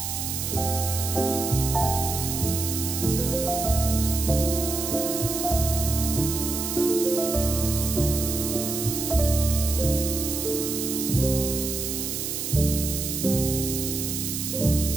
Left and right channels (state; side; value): noise; right; hiss, 3 dB below the sound